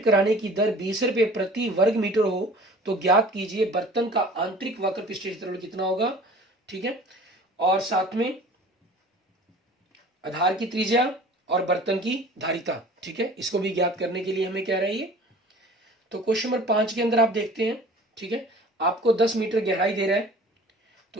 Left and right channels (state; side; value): normal; both; correlation 0.45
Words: कराने की दर 20 रुपये प्रति वर्ग मीटर हो तो ज्ञात कीजिए बर्तन का आंतरिक वक्र पृष्ठ क्षेत्रफल कितना होगा, ठीक है। और साथ में आधार की त्रिज्या और बर्तन की धारिता, ठीक है, इसको भी ज्ञात करने के लिए हमें कह रहा है ये। तो क्वेश्चन नंबर 5 के अंदर आप देखते हैं, ठीक है, आपको 10 मीटर गहराई दे रहा है,